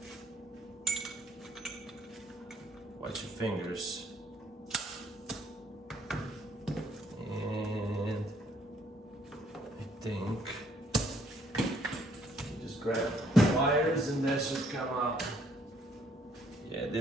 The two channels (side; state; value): both; normal; correlation 0.65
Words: Watch your fingers. And I think you just grab wires and that should come out. Yeah,